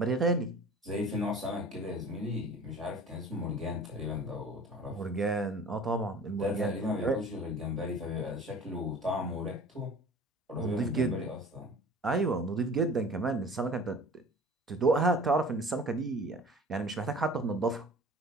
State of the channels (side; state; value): both; normal; correlation 0.43